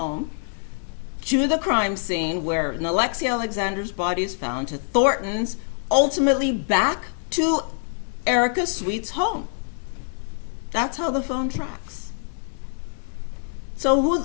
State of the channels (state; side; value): silent; right; digital silence